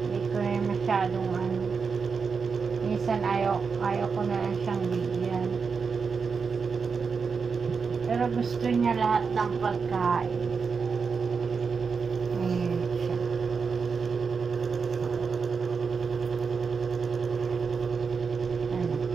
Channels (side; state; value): left; quieter; 5.4 dB